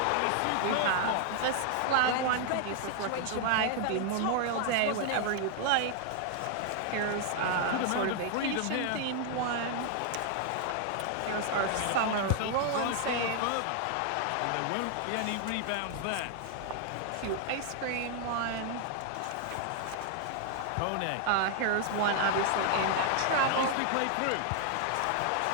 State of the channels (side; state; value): both; different; correlation 0.00